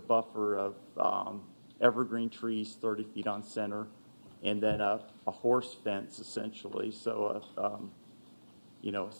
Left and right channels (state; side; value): inverted; both; correlation -1.00